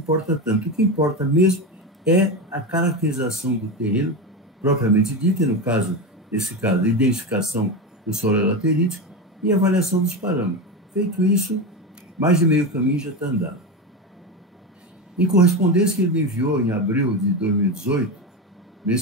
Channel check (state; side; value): normal; both; correlation 0.18